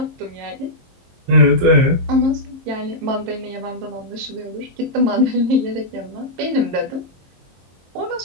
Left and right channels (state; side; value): late; left; 22 ms